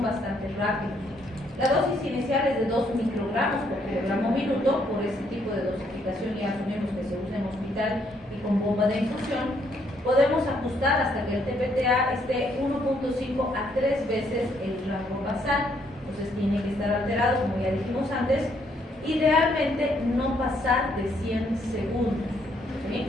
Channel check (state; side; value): normal; both; correlation 0.70